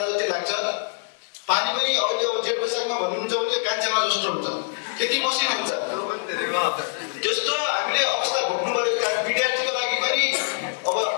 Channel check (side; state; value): right; silent; digital silence